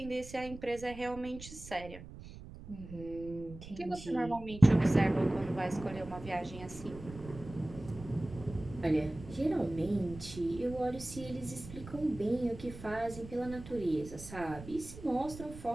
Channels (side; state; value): right; noise; rumble, 14 dB below the sound